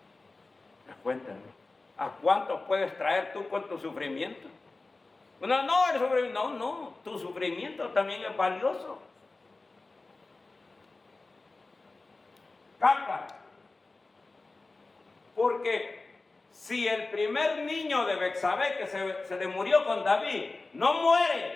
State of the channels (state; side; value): quieter; right; 3.5 dB